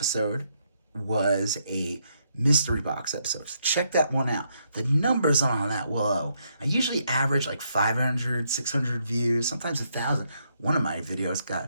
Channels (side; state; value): both; inverted; correlation -0.76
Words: was a mystery box episode. So check that one out. The numbers on that, whoa. I usually average like 500, 600 views, sometimes 1,000. One of my videos